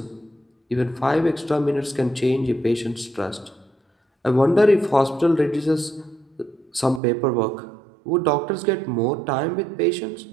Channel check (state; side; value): drops out; left; at 7.0 s